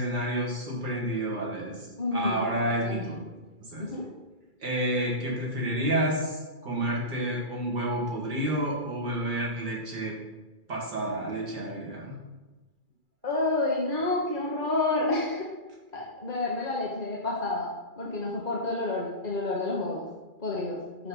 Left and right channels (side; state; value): left; late; 2.3 ms